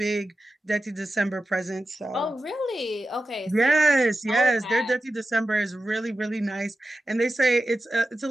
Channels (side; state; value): both; normal; correlation 0.92